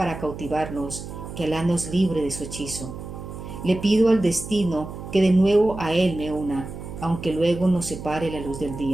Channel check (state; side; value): noise; right; hum, 10 dB below the sound